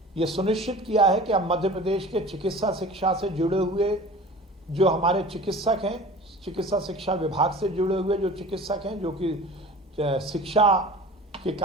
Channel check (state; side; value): normal; both; correlation 0.40